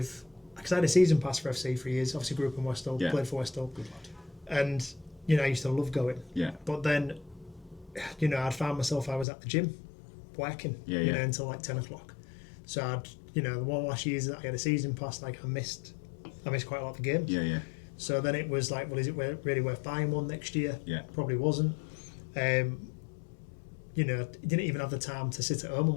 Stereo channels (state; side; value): drops out; right; at 9.2 s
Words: Because I had a season pass for FC for years. Obviously grew up in West Hull, played for West Hull. And, you know, I used to love going. Yeah. But then, you know, I'd found myself, I was at the gym working, you know, until like 10 o'clock. So I'd, you know, the one last years that I had a season pass, like, I missed quite a lot of the games. Yeah. So then it was like, well, is it really worth buying one next year? Yeah. Probably wasn't. You know, didn't even have the time to sit at home